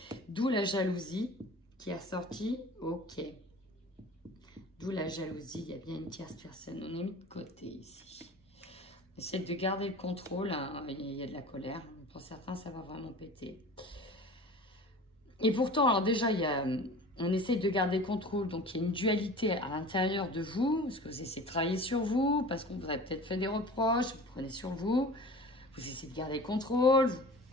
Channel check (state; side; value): normal; both; correlation 0.40